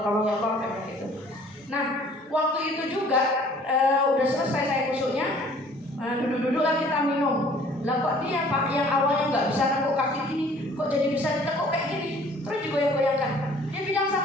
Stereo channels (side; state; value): both; normal; correlation 0.54